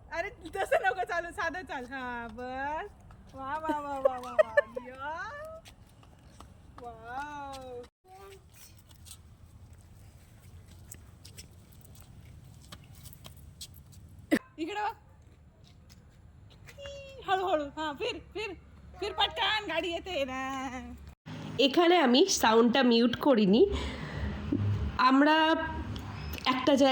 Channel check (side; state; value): both; identical; correlation 1.00